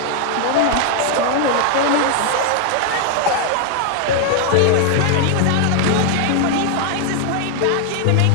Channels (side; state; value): both; different; correlation 0.00